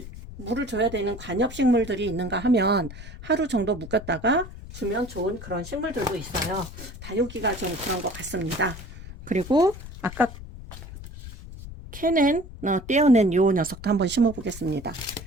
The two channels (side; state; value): left; noise; rumble, 13 dB below the sound